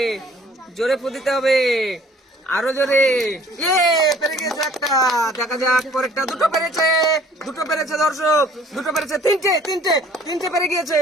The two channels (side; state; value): both; normal; correlation 0.55